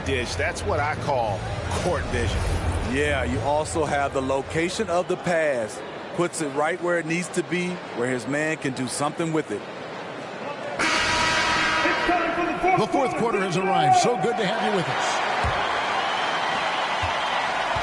dish. That's what I call court vision. Yeah, you also have the location of the pass. Puts it right where it needs to be, where his man can do something with it. The fourth quarter has arrived. So good to have you with us.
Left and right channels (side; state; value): both; identical; correlation 1.00